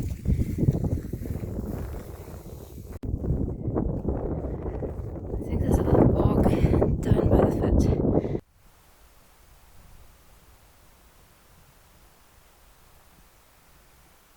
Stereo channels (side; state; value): both; identical; correlation 1.00